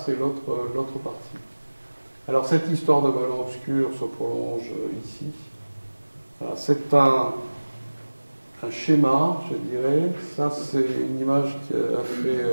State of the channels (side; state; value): both; inverted; correlation -1.00